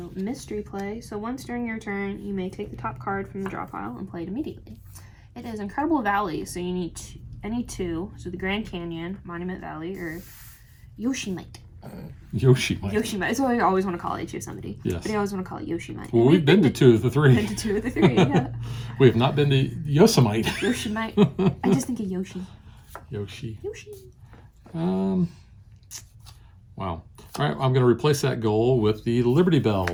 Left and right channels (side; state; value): both; identical; correlation 1.00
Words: mystery play. So once during your turn, you may take the top card from the draw pile and play it immediately. It is Incredible Valley, so you need any 2. So the Grand Canyon, Monument Valley, or Yosemite. Yosemite. Yosemite. That's what I always want to call it. Yosemite. Yes. But I always want to call it Yosemite. Well, we've been to 2 of the 3. Been to 2 of the 3, yeah. We have not been to Yosemite. Yosemite. I just think of Yoshi. Yoshi. Yoshi. Wow. All right, I'm going to replace that goal with the Liberty